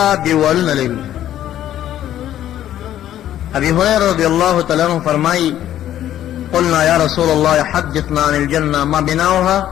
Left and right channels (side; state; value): right; quieter; 12.0 dB